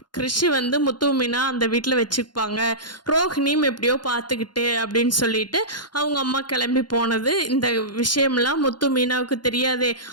கிறிஷ் வந்து முத்து மீனா அந்த வீட்டில் வச்சுப்பாங்க, ரோஹிணியும் எப்படியோ பார்த்துக்கிட்டு அப்படின்னு சொல்லிட்டு அவங்க அம்மா கிளம்பி போனது. இந்த விஷயம்லாம் முத்து மீனாவுக்கு தெரியாதே.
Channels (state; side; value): late; right; 0.71 ms